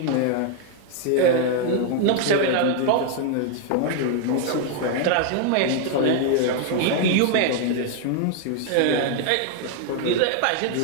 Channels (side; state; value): both; different; correlation 0.00